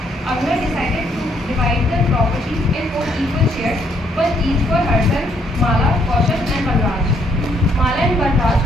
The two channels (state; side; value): normal; both; correlation 0.70